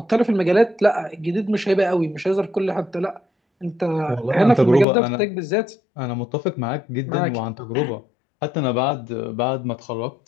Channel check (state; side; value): drops out; right; at 4.9 s